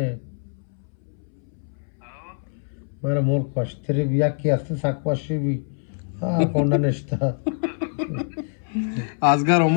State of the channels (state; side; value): silent; right; 62 dB below the other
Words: मारे मोर पश्तरी भी या की अस्ते साकवाशी भी हाँ कोंडा निष्ठा आजगर